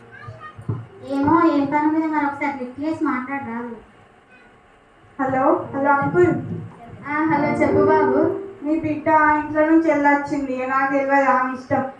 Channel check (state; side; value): identical; both; correlation 1.00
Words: ఏమో ఏం పని మీద మరి ఒకసారి లిఫ్ట్ చేసి మాట్లాడరాదు. హలో హలో అంకుల్, హలో చెప్పు బాబు. మీ బిడ్డ ఇంట్లో నుంచి వెళ్ళొచ్చింది, నాకు తెలియదు ఆమె ఇష్టం.